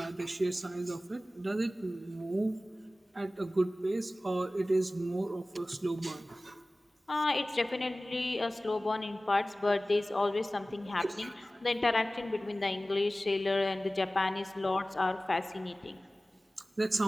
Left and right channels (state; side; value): normal; both; correlation 0.97